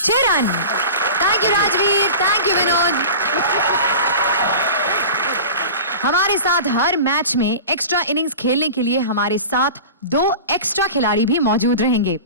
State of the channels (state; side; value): inverted; both; correlation -0.34